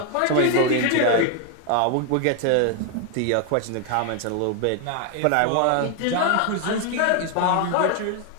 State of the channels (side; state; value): both; different; correlation 0.01